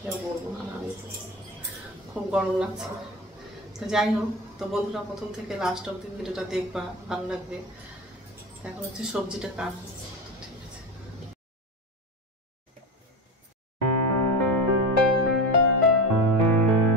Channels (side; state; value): both; normal; correlation 0.23